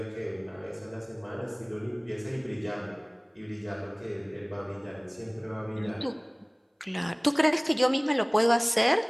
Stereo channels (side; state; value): both; identical; correlation 1.00